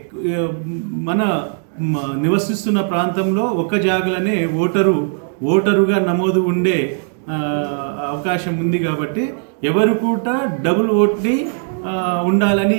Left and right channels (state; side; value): silent; left; 58 dB below the other